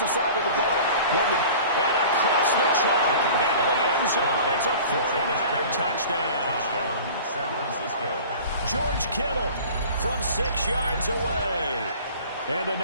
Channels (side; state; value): both; inverted; correlation -0.43